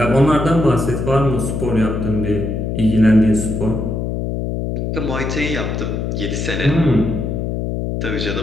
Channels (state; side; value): noise; left; hum, 2 dB below the sound